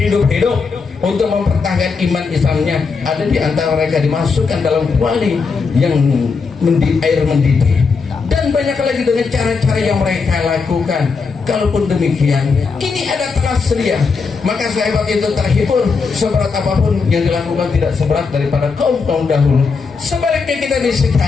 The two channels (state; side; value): quieter; right; 4.9 dB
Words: untuk mempertahankan iman Islamnya. Ada di antara mereka dimasukkan dalam kuali yang air mendidih. Dan banyak lagi dengan cara-cara yang mereka lakukan. Kalaupun demikian, ini ada telah sedia, maka sahabat itu terhibur. Seberat apapun yang dilakukan tidak seberat daripada kaum-kaum dahulu. Sebaliknya kita di